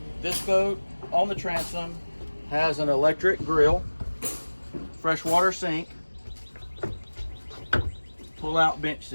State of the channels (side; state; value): both; inverted; correlation -1.00